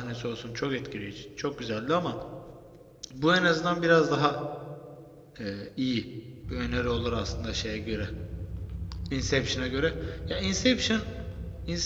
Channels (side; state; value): both; identical; correlation 1.00